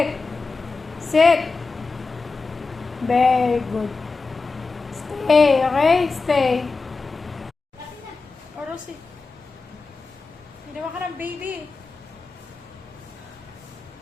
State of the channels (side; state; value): right; quieter; 4.0 dB